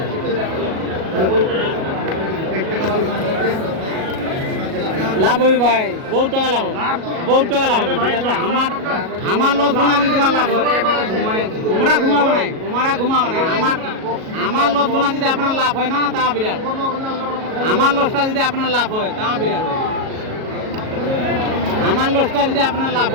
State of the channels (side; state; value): left; late; 37 ms